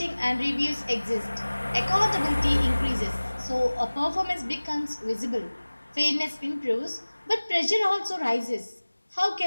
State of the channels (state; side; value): inverted; both; correlation -1.00